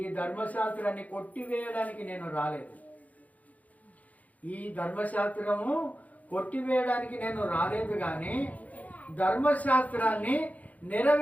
ధర్మశాస్త్రాన్ని కొట్టివేయడానికి నేను రాలేదు. ఈ ధర్మశాస్త్రము కొట్టివేయడానికి నేను రాలేదు, కానీ ధర్మశాస్త్రాన్ని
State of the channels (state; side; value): late; right; 0.073 ms